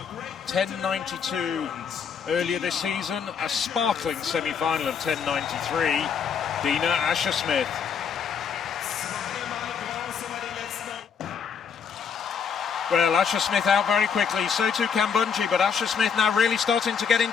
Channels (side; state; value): right; quieter; 6.8 dB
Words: 10.92 earlier this season, a sparkling semi-final of 10.93. Dina Asher-Smith. Well, Asher-Smith out very quickly, so too Kambundji, but Asher-Smith now really starting to get